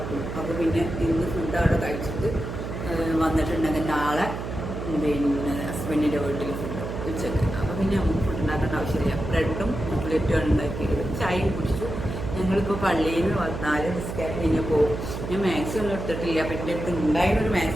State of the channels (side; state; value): right; noise; hum, 6 dB below the sound